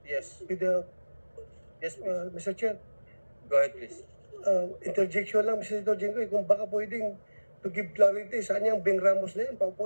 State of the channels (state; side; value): inverted; both; correlation -1.00